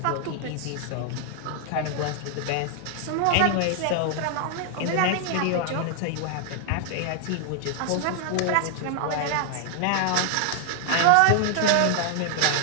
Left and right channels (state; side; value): different; both; correlation 0.00